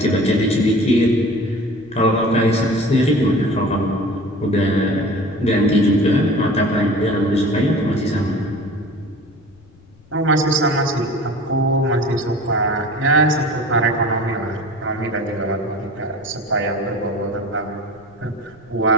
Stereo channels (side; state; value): left; noise; rumble, 28 dB below the sound